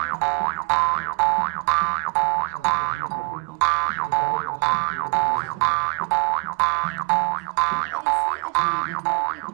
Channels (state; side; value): quieter; left; 30.8 dB